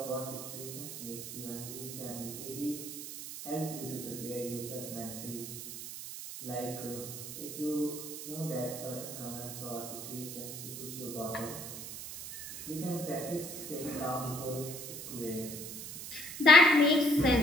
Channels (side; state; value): right; noise; hiss, 9 dB below the sound